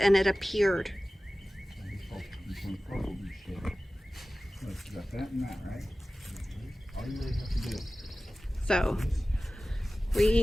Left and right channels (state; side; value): normal; both; correlation 0.97